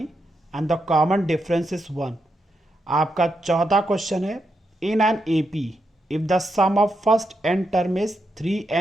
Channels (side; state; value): both; normal; correlation 0.83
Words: and the common difference is 1। आपका चौथा question है in an AP if the sum of first n term is